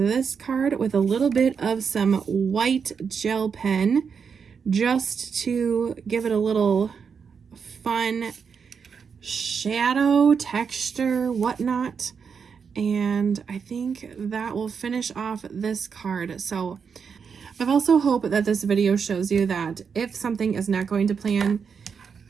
card with a little bit of some white gel pen just to give it a little fun shadow texture, whatnot. And I think that will finish off this card. So I've also hoped that this video shows you that if something is not going to plan,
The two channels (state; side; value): quieter; left; 6.3 dB